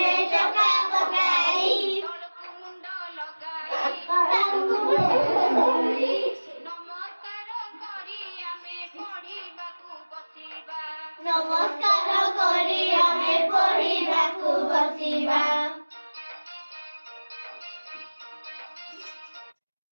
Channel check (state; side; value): inverted; both; correlation -1.00